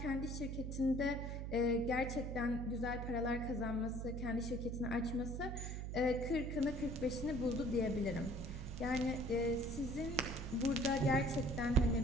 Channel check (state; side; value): noise; right; hum, 5 dB below the sound